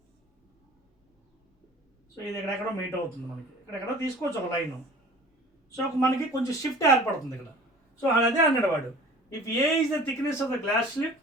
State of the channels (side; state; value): both; normal; correlation 0.45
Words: సో ఇది ఎక్కడెక్కడో మీట్ అవుతుంది మనకి, ఇక్కడెక్కడో తీసుకోవచ్చు ఒక లైన్. సో మనకి కొంచెం షిఫ్ట్ ఏర్పడుతుంది ఇక్కడ. సో అదే అన్నాడు వాడు, if A is the thickness of the glass